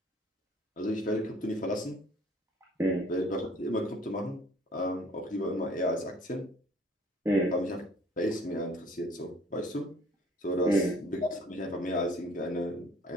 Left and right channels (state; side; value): normal; both; correlation 0.55